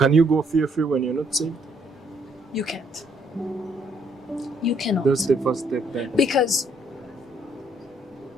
you go fear-free when you're not saved? You can't. You cannot. That's the first step then. Because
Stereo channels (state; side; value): normal; both; correlation 0.69